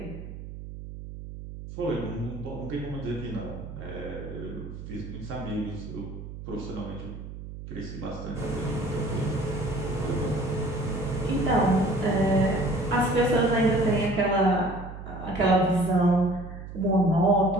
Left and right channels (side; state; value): right; noise; hum, 11 dB below the sound